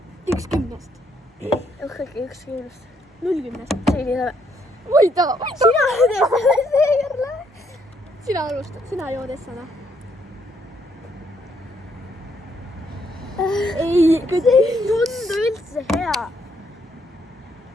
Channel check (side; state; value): both; normal; correlation 0.72